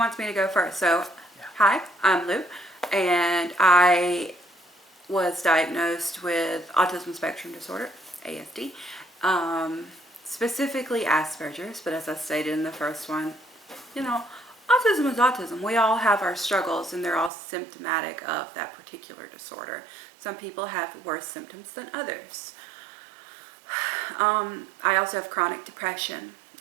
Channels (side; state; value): left; drops out; at 17.3 s